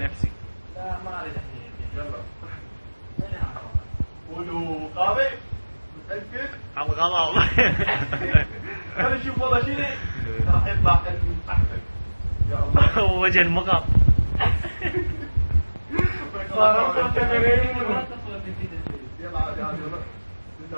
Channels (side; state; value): both; inverted; correlation -1.00